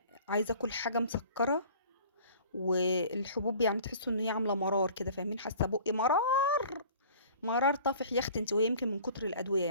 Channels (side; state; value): both; inverted; correlation -0.47